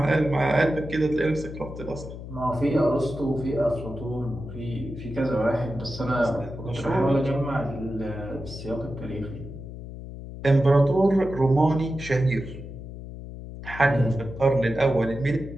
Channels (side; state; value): left; noise; hum, 11 dB below the sound